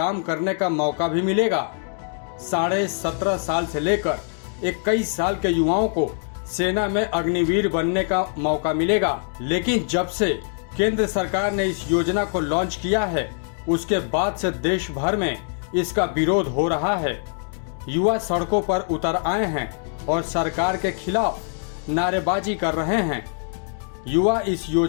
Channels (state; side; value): silent; right; 63 dB below the other